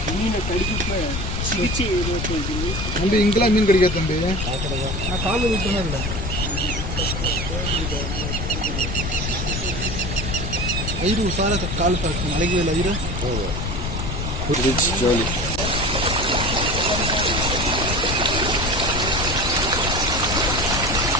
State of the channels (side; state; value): left; noise; rumble, 3 dB below the sound